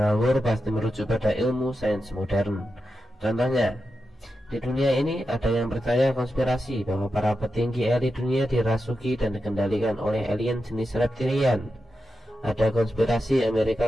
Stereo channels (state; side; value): normal; both; correlation 0.89